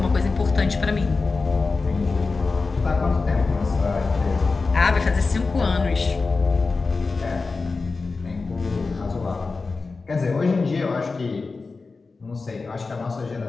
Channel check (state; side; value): quieter; right; 4.1 dB